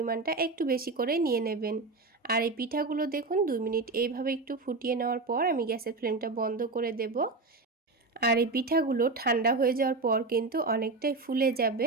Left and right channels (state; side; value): quieter; left; 3.6 dB